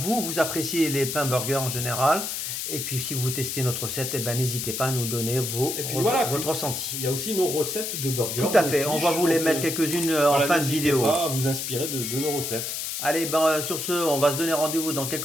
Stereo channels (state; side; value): noise; left; hiss, 4 dB below the sound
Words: appréciez les pains burgers en général. Et puis, si vous testez notre recette, n'hésitez pas à nous donner votre ressenti. Il y a aussi nos recettes de burgers. Tout à fait. On va vous les mettre quelques-unes en fin de vidéo. N'hésitez pas à vous inspirer de nos recettes. Allez, sur ce, on va se donner rendez-vous dans